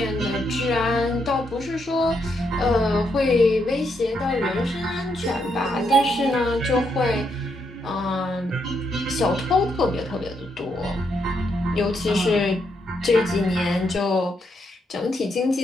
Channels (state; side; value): normal; both; correlation 0.78